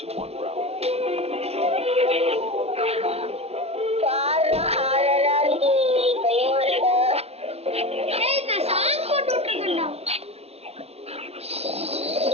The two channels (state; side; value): late; left; 0.30 ms